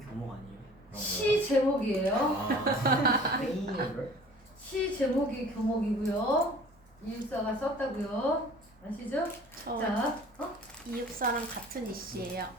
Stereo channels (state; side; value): normal; both; correlation 0.48